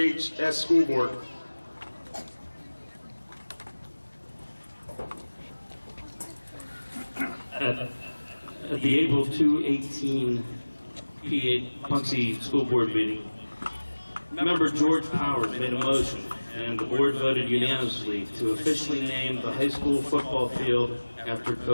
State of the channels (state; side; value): inverted; both; correlation -1.00